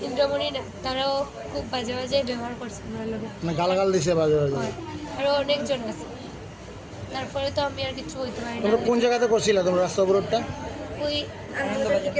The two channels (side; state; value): both; identical; correlation 1.00